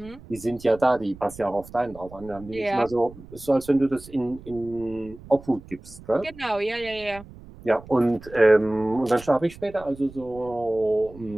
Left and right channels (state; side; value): noise; right; rumble, 19 dB below the sound